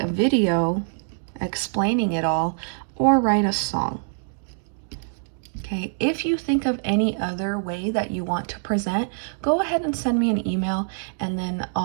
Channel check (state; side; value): silent; left; digital silence